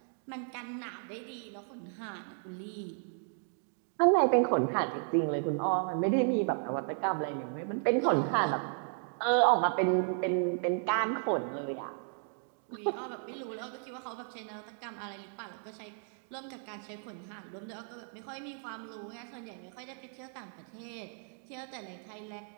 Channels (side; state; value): left; silent; 55 dB below the other